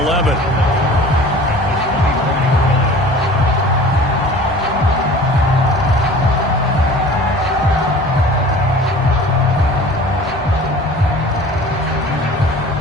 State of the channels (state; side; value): normal; both; correlation 0.44